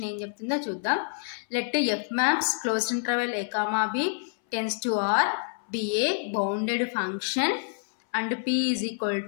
ఏం చెప్తుందో చూద్దాం. Let f maps closed interval a comma b tends to R be a bounded function and p is equal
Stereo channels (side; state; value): right; silent; 60 dB below the other